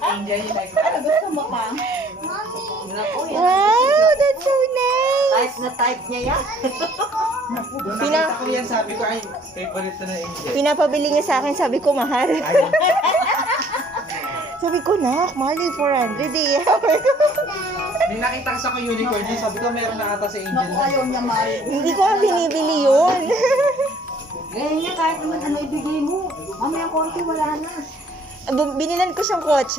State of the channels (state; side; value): normal; both; correlation 0.58